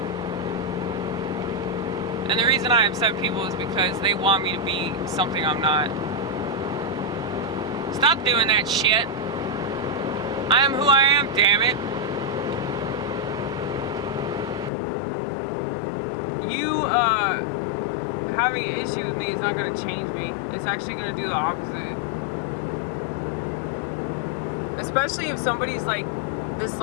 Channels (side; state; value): right; drops out; at 14.7 s